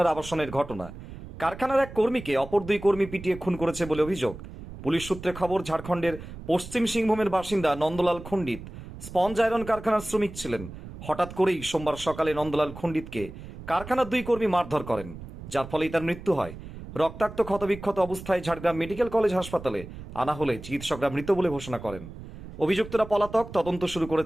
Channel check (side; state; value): right; noise; rumble, 13 dB below the sound